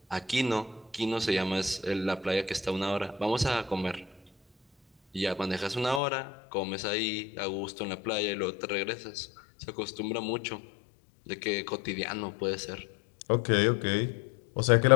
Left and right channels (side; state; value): right; drops out; at 6.0 s